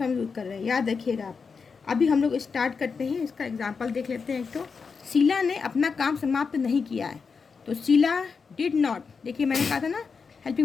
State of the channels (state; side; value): quieter; right; 5.3 dB